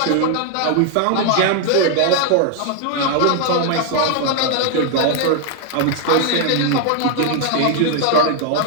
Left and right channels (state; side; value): different; both; correlation 0.00